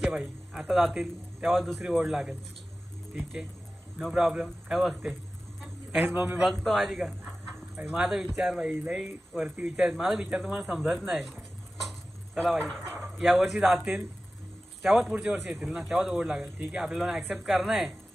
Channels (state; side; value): normal; both; correlation 0.95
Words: आहे भाई आता जातील तेव्हा दुसरी ओढ लागेल. ठीक आहे नो प्रॉब्लेम. काय बघते काहीच मम्मी बघतो माझी का भाई. माझा विचार भाई लई वरती विचार माझा विचार तुम्हाला समजत नाही. चला भाई या वर्षी जातील तेव्हाच पुढच्या वर्षी येतील ना तेव्हाच ओढ लागेल. ठीक आहे आपल्याला ॲक्सेप्ट करणं आहे.